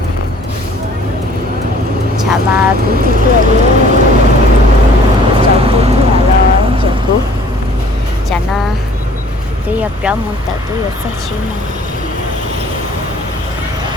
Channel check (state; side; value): normal; both; correlation 0.54